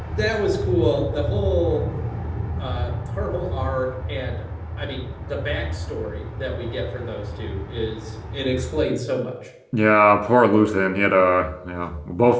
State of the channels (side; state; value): both; identical; correlation 1.00